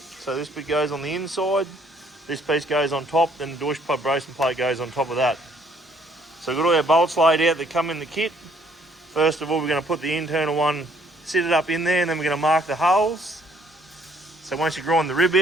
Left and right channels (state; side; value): normal; both; correlation 0.64